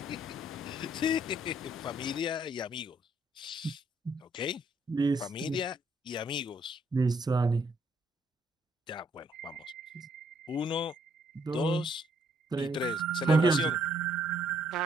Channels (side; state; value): both; normal; correlation 0.69